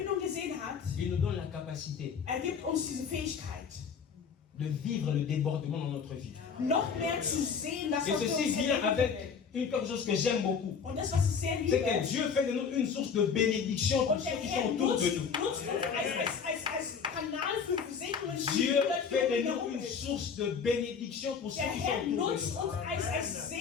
gesehen hat, il nous donne la capacité er gibt uns diese Fähigkeit, de vivre le débordement dans notre vie. noch mehr zu sehen, das Et was wir ceci uns vient erleben avec können. quelque chose que j'aime beaucoup. Und das, was ich sehr C'est liebe, que Dieu fait de nous une source de bénédiction pour und ceux der qui Herr sont autour nutzt de nous. uns als Kanal für Segnungen, Dieu fait de nous herum une ist. source de bénédiction pour ceux Der qui Herr sont autour de nutzt nous. uns als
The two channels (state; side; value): quieter; right; 6.3 dB